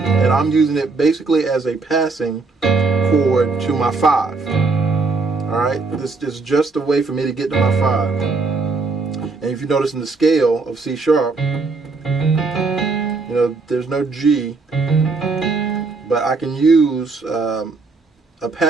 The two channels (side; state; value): left; quieter; 4.0 dB